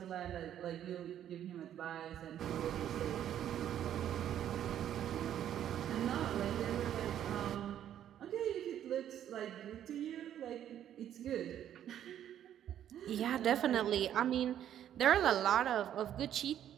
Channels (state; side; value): quieter; left; 10.6 dB